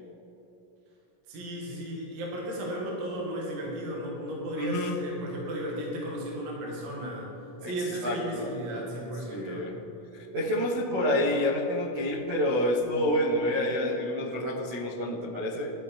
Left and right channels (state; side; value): late; left; 16 ms